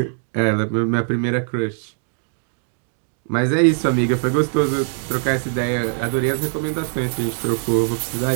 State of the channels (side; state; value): left; silent; digital silence